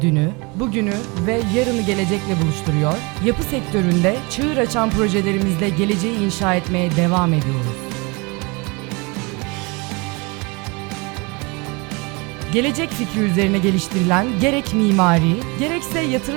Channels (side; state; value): left; quieter; 28.2 dB